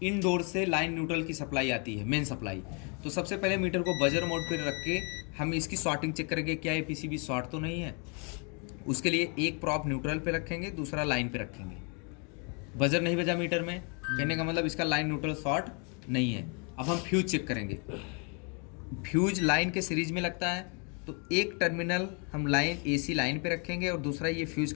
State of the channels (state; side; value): quieter; right; 35.7 dB